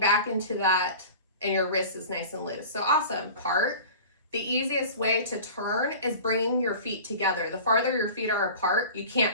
into that and your wrist is nice and loose. So awesome part. The easiest way to turn is bringing your feet together. The farther your feet are apart, you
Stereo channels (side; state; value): both; inverted; correlation -0.38